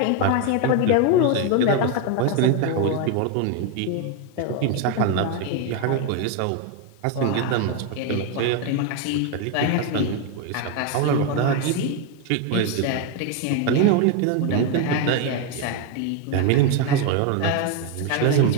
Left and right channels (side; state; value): both; different; correlation 0.02